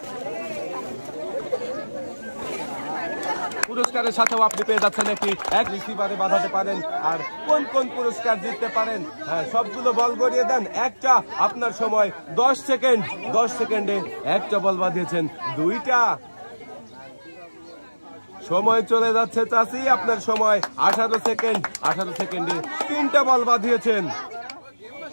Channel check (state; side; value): inverted; both; correlation -1.00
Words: পুরস্কারের সাথেও আপনি পেয়ে যাচ্ছেন এক রিসিভারে বাঁধাতে পারেন। আর কোন কোন পুরস্কার জিততে পারেন, হ্যাঁ, সবগুলো বল গড়িয়ে দেন। একটা, আপনার সময় 10 সেকেন্ড। 10 সেকেন্ডে একটা বল বাঁধিয়েছেন। 2টা। সময় চলে যাচ্ছে চাচি। আপনার সময় 18 সেকেন্ড। 18 সেকেন্ডে 3টা বল বাঁধিয়েছেন।